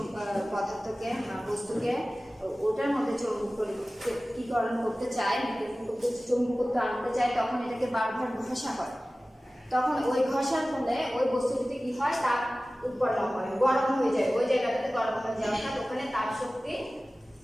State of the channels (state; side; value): normal; both; correlation 0.97